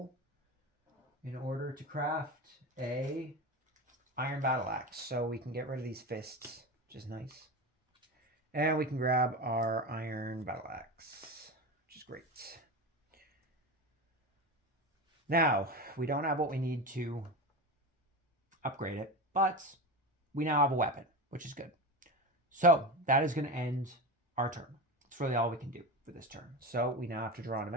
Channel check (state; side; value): normal; both; correlation 0.23